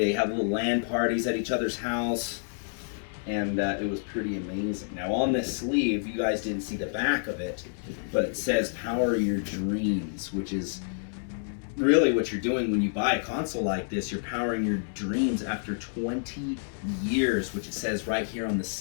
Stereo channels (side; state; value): right; silent; 59 dB below the other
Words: have little LAN parties at each other's house, and it was pretty amazing. Now on this sleeve, you guys didn't see the back of it, but it says "Power Your Dreams," which is really what you're doing when you buy a console like this. You're powering your dreams after 20 years, which it says right here on the